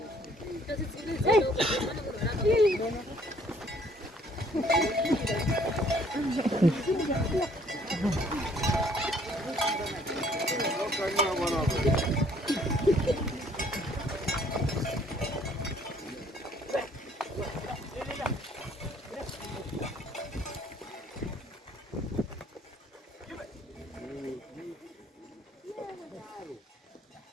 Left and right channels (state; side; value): normal; both; correlation 0.61